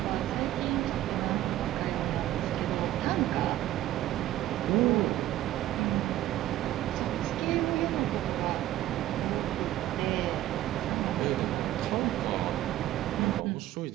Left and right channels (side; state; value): left; quieter; 14.0 dB